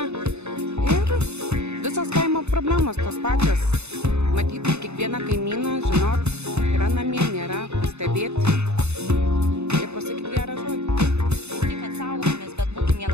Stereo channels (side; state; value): left; late; 0.81 ms